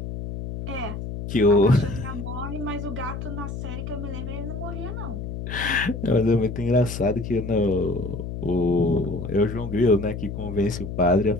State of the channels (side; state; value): left; noise; hum, 7 dB below the sound